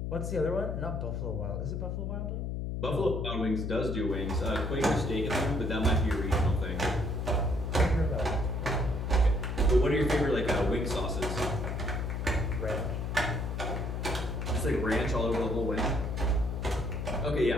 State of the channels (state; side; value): noise; left; hum, 2 dB below the sound